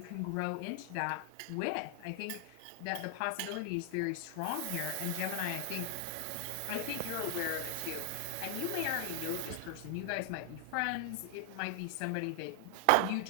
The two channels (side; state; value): both; different; correlation 0.00